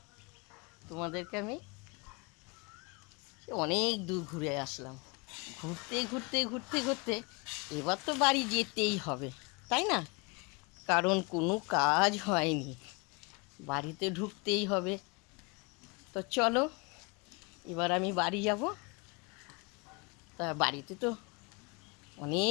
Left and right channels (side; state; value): right; quieter; 30.0 dB